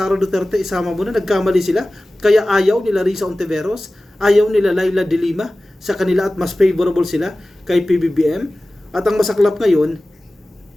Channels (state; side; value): normal; both; correlation 0.97